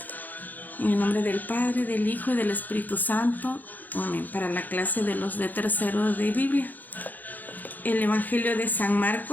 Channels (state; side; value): late; right; 0.084 ms